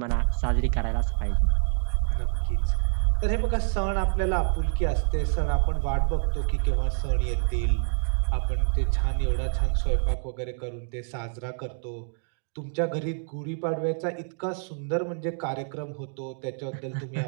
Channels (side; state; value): left; silent; 60 dB below the other